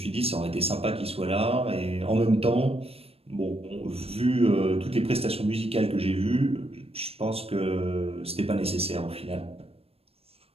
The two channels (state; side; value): late; left; 0.28 ms